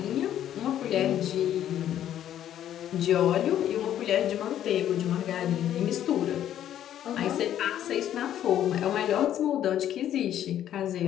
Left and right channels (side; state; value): right; quieter; 11.1 dB